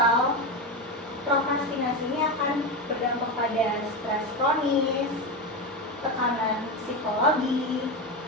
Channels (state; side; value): normal; both; correlation 0.16